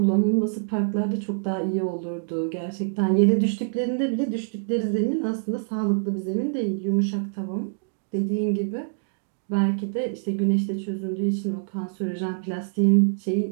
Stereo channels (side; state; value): left; silent; digital silence